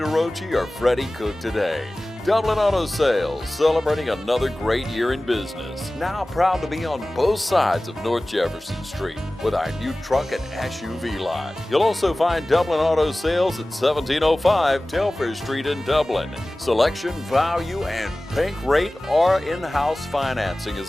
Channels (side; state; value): both; normal; correlation 0.97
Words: or Freddie Cook today. Dublin Auto Sales, celebrating another great year in business. Now proud to be on both sides of North Jefferson Street with our new truck and SUV lot. You'll also find Dublin Auto Sales at 1705 Telfair Street in Dublin. Selection, value, and bank rate or in-house financing